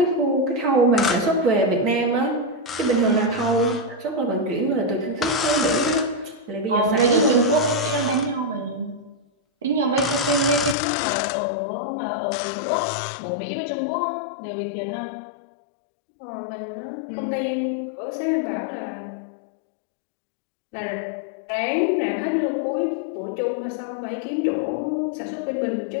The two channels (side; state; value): right; drops out; at 10.8 s